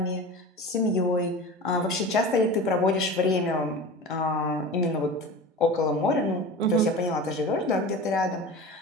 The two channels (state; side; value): normal; both; correlation 0.33